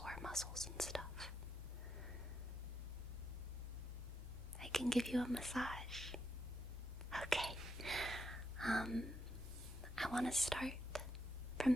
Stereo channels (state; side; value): normal; both; correlation 0.81